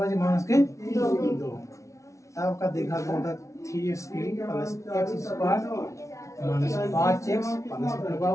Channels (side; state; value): right; late; 0.14 ms